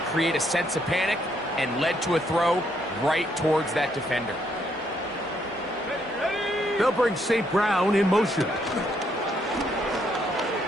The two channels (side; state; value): both; normal; correlation 0.73